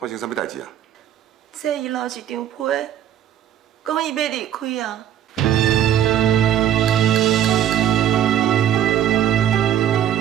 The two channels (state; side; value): quieter; left; 10.5 dB